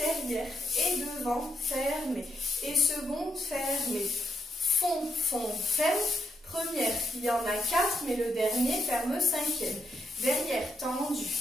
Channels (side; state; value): both; normal; correlation 0.81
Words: et devant, fermé. Et seconde, fermé. Fond, ferme. Première, il y en a 4, mais le dernier ferme 5e. Derrière, tendu.